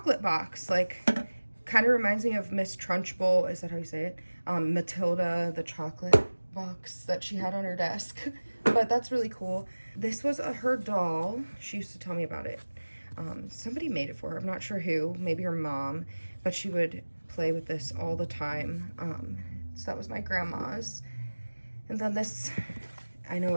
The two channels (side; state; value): both; inverted; correlation -1.00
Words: box. Like, kind of reminds me of Miss Trunchbull. Is that how you say it? Matilda, the chocolate box that she had on her desk. But that's really cool. This was her doll. She used to tell me about it. Somebody made it for her. I'm not sure who. Maybe her mom. But she would play with this all the time. So that was my grandma's. And then this, I know,